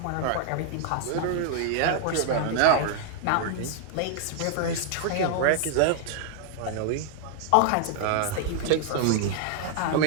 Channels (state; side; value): different; both; correlation 0.00